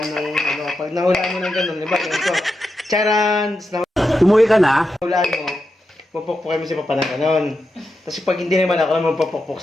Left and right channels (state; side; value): normal; both; correlation 0.87